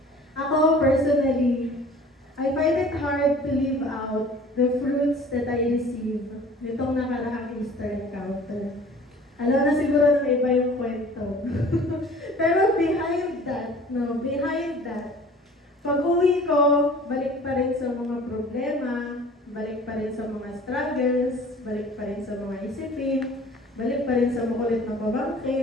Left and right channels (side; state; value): both; normal; correlation 0.47